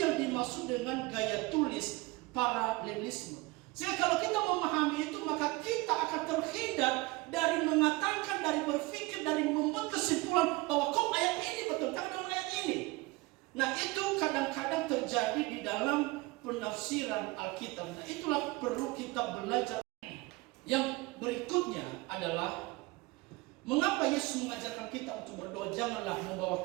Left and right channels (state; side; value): quieter; left; 22.6 dB